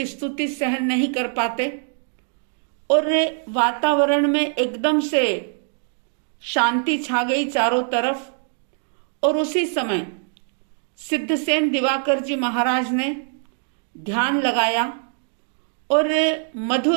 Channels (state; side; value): silent; left; 60 dB below the other